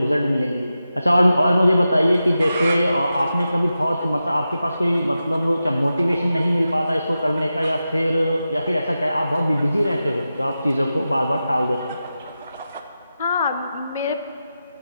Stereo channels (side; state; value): both; inverted; correlation -0.91